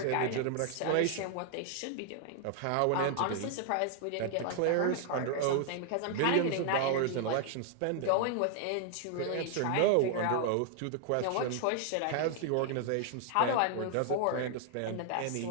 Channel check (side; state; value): both; different; correlation 0.00